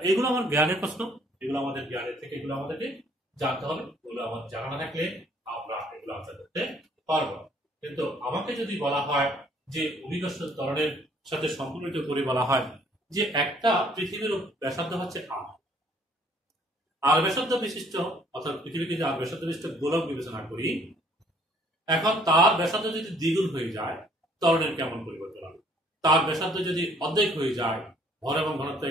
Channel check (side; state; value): both; normal; correlation 0.61